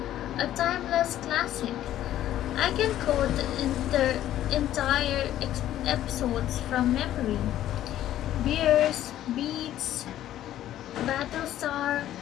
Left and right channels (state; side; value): quieter; right; 12.6 dB